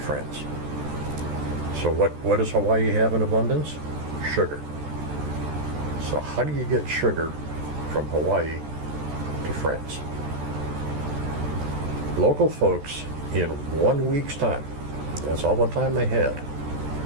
France. So what does Hawaii have in abundance? Sugar. So how do you get sugar from Hawaii to France? Local folks, in 1 week's time, that's all the time they had,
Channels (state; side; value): late; left; 14 ms